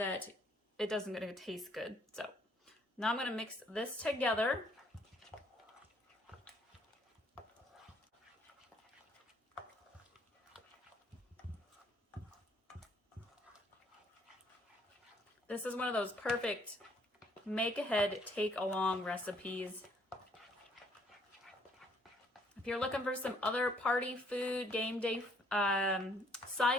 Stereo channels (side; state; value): both; normal; correlation 0.65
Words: it doesn't going to taste good. So now I'm going to mix this together. This is one of those perfect make ahead, take along recipes. If you're looking for some other party food, game day